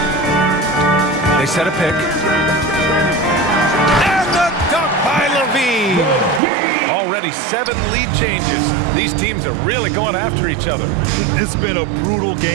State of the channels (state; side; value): drops out; left; at 6.4 s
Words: They set a pick. And the dunk by Levine. Already 7 lead changes. These teams are really going after each other. It's been a brutal